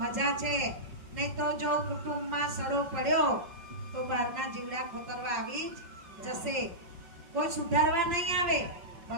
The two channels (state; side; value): late; left; 5.4 ms